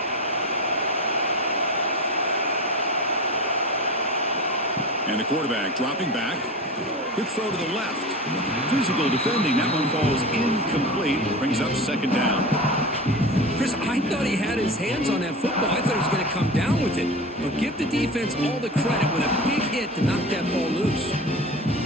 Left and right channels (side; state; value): both; normal; correlation 0.30